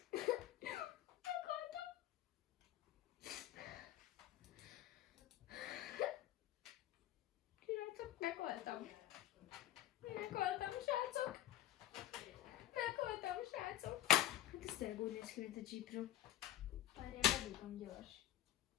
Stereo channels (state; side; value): quieter; right; 13.5 dB